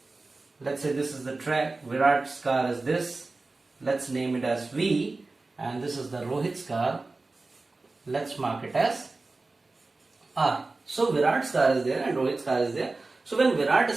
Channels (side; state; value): left; quieter; 3.4 dB